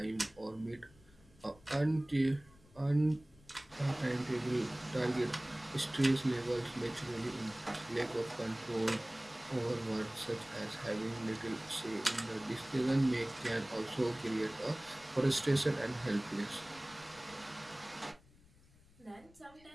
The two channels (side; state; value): left; noise; rumble, 26 dB below the sound